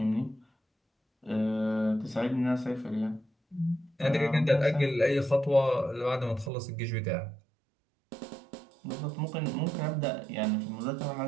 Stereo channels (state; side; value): drops out; left; at 6.5 s